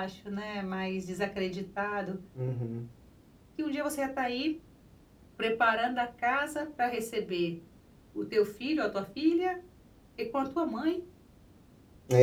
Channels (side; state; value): both; identical; correlation 1.00